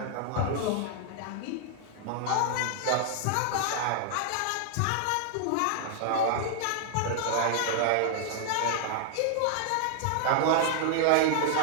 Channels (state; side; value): different; both; correlation 0.00